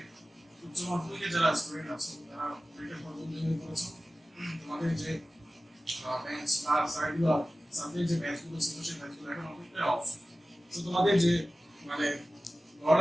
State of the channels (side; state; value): both; normal; correlation 0.96